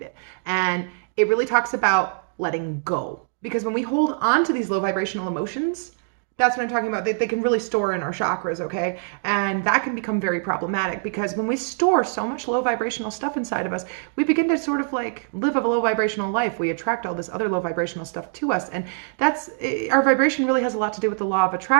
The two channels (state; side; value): silent; left; 63 dB below the other